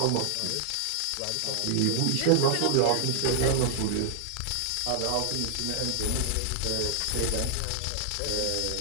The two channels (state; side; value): different; both; correlation 0.00